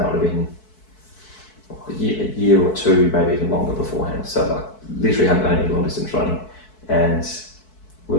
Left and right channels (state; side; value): late; right; 4.6 ms